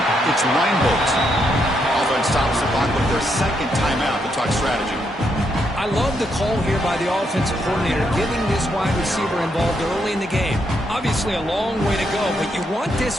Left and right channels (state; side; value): normal; both; correlation 0.78